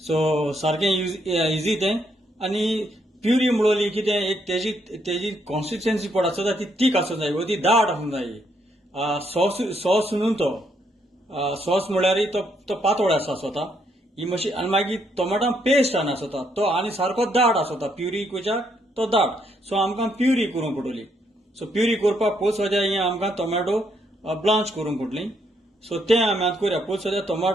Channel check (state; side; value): normal; both; correlation 0.74